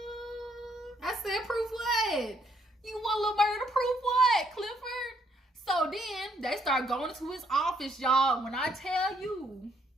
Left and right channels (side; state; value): both; normal; correlation 0.70